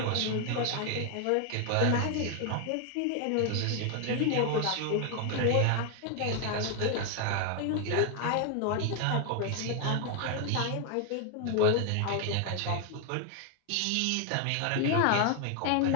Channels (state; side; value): different; both; correlation 0.00